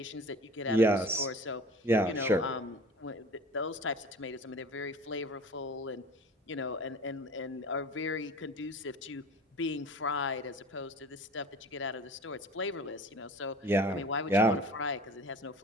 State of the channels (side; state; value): both; normal; correlation 0.42